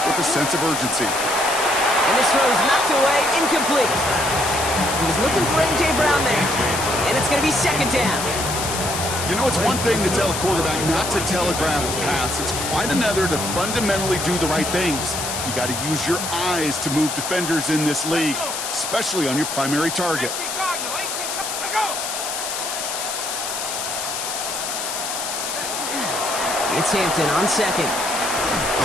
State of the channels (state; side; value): noise; left; hiss, 4 dB below the sound